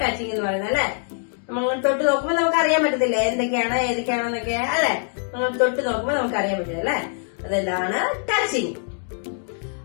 ടച്ചിങ് എന്ന് പറയുന്നത് അല്ലെ. നമ്മളിങ്ങനെ തൊട്ട് നോക്കുമ്പോൾ നമുക്ക് അറിയാൻ പറ്റത്തില്ല ഏതൊക്കെയാണെന്നൊക്കെ അല്ലെ. നമ്മൾ തൊട്ട് നോക്കുമ്പോൾ നമുക്ക് അറിയാൻ പറ്റില്ല അല്ലെ. അതെല്ലാം ടച്ചിങ്.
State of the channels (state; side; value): silent; right; 57 dB below the other